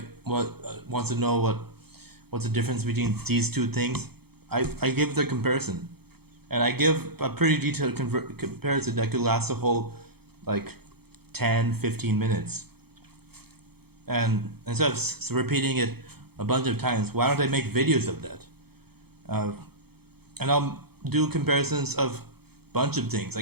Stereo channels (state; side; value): late; left; 0.96 ms